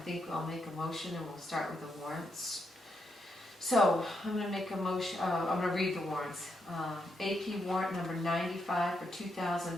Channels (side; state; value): both; normal; correlation 0.81